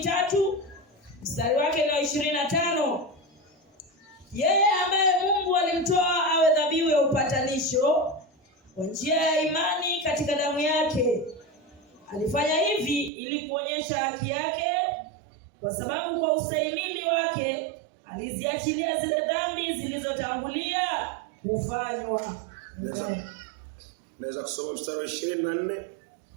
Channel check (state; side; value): drops out; left; at 13.1 s